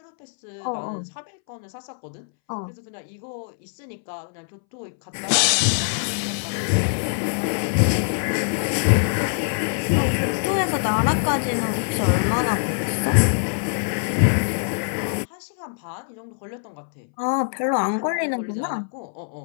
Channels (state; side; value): silent; right; 63 dB below the other